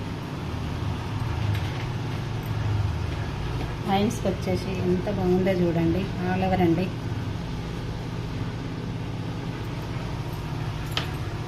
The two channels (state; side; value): identical; both; correlation 1.00